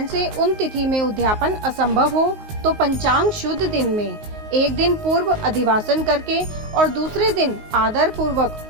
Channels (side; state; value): left; late; 19 ms